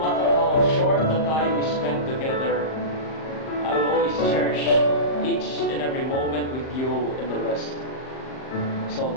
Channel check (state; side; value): late; right; 38 ms